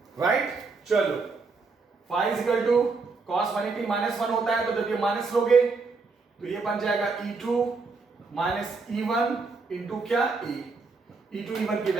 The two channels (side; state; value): left; quieter; 4.3 dB